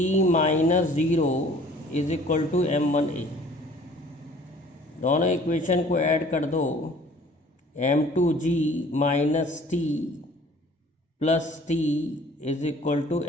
minus 0 is equal to M1A। दोनों इक्वेशन को ऐड कर दो, M2G minus T plus T is equal to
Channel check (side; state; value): both; normal; correlation 0.52